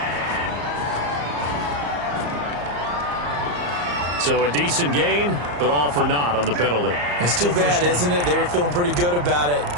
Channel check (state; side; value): late; left; 34 ms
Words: So a decent gain, but all for naught on the penalty. It's too bad, isn't it? They were feeling pretty good about it.